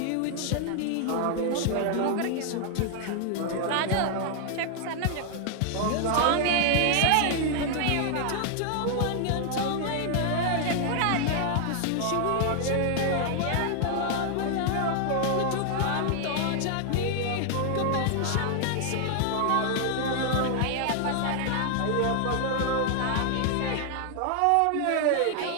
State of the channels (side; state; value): both; different; correlation 0.00